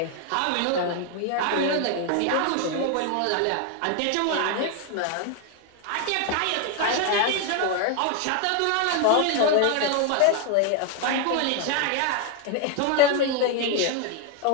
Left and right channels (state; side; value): different; both; correlation 0.01